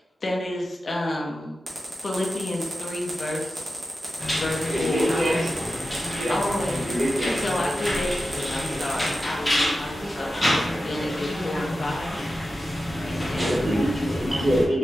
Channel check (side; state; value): both; normal; correlation 0.92